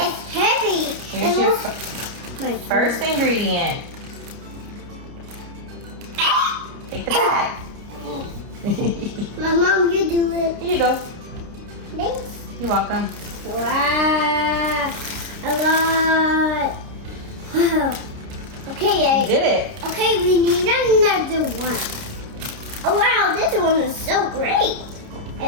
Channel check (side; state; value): left; late; 29 ms